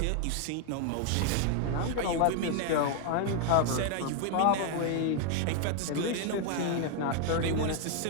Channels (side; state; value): both; different; correlation 0.00